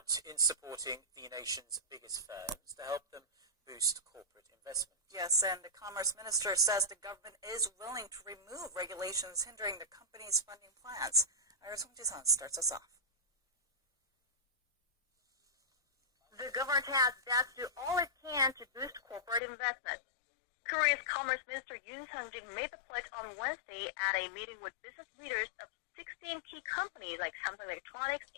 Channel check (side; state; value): right; drops out; at 19.4 s